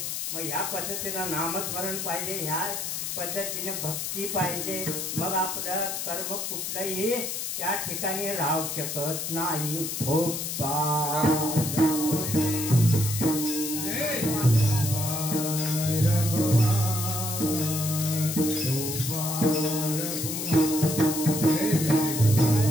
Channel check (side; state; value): left; noise; hiss, 4 dB below the sound